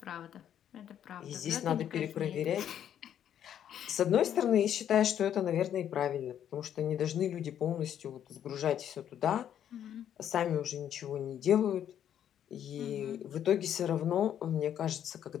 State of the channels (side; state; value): right; quieter; 10.0 dB